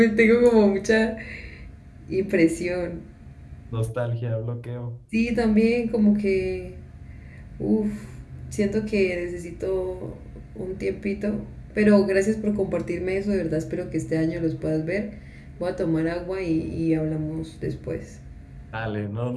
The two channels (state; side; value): identical; both; correlation 1.00